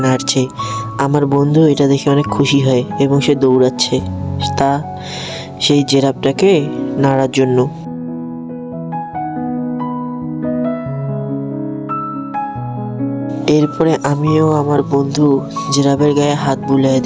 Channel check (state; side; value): identical; both; correlation 1.00